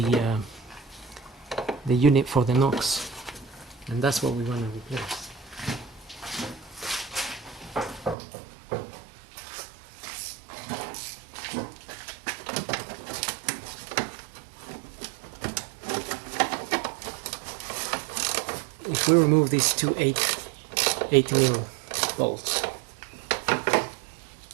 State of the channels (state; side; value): drops out; left; at 8.2 s